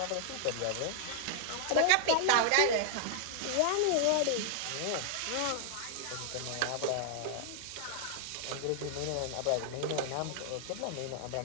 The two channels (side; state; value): both; different; correlation 0.00